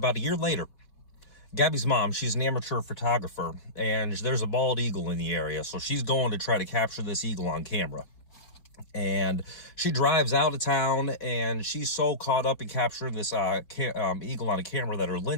a year later, Gabby's mom, she's an amateur photographer, and there's a bald eagle in the area, so she's going to try to capture this eagle on camera. And she drives out of town, and she's so caught up in capturing this eagle on a camera that her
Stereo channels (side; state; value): right; late; 4.2 ms